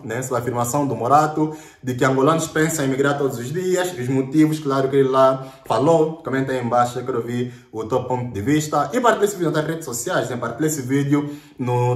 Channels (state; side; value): identical; both; correlation 1.00